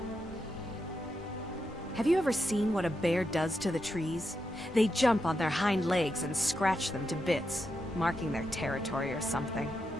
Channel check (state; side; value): normal; both; correlation 0.85